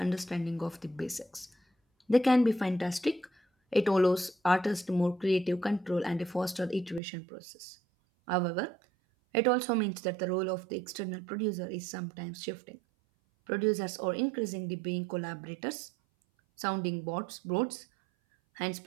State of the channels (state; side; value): drops out; left; at 7.0 s